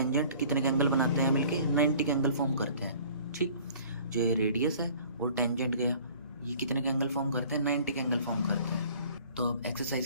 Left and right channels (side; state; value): both; inverted; correlation -0.51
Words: कितने के एंगल बनाते हैं मिलके, 90 के एंगल फॉर्म करते हैं, ठीक। जो ये रेडियस है और टेंजेंट गया, ये कितने के एंगल फॉर्म करते हैं, 90 के एंगल फॉर्म करते हैं। तो अब